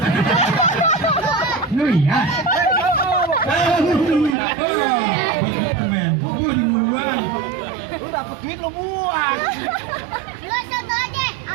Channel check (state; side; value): drops out; left; at 4.4 s